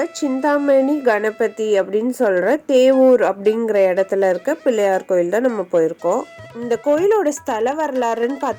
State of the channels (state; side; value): identical; both; correlation 1.00